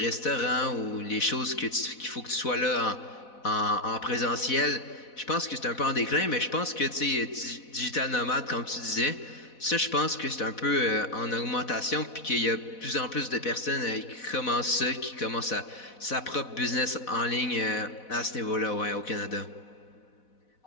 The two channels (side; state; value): right; late; 4.1 ms